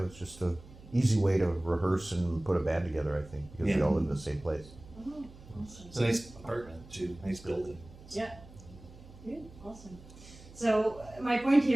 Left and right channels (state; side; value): noise; right; hum, 20 dB below the sound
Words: was just a easy way to rehearse and put a band together. I think because we all live in the same place. Oh, awesome. It's a nice apartment too, nice building. Yeah. Good. Awesome. So my point